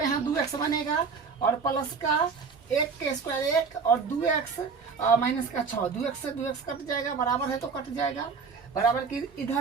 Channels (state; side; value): quieter; left; 5.3 dB